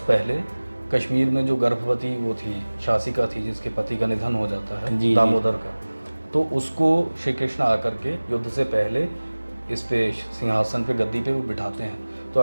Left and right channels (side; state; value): both; inverted; correlation -1.00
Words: पहले कश्मीर में जो गर्भवती वो थी, शासिका थी, जिसके पति का निधन हो जाता है, दामोदर का, तो उसको श्री कृष्ण आकर के युद्ध से पहले इस पे सिंहासन पे, गद्दी पे वो बिठाते हैं। तो